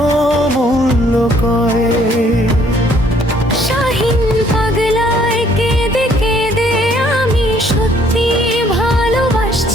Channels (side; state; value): both; normal; correlation 0.63